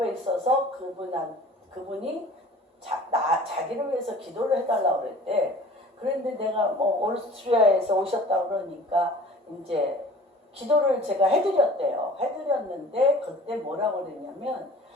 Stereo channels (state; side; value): normal; both; correlation 0.45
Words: 있어서 그분이 자기를 위해서 기도를 해달라고 그랬대. 그런데 내가 오스트리아에서 오셨다고 그러니까 이제 기도를 제가 해드렸대요. 해드렸는데 그때 뭐라고 그랬냐면